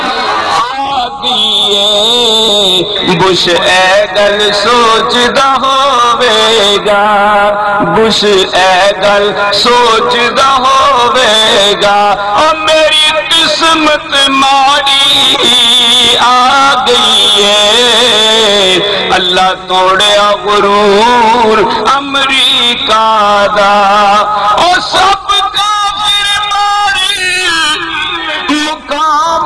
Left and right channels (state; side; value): identical; both; correlation 1.00